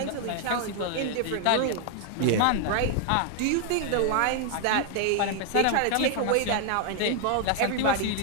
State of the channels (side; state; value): both; different; correlation 0.00